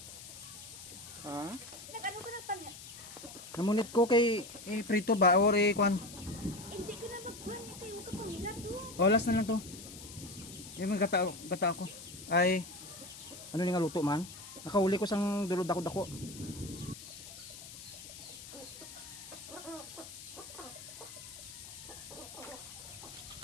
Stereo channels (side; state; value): left; noise; hiss, 14 dB below the sound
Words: Nag-ano ko na pala? Namunit ko kay prito ba or kwan? Hindi ko na magkuhan niya kayo ka pamila to. Oh, last na lang to. Yung mga gata ako. Ay, ano ni nga luto man? Nakauli ko sang dulo dako-dako.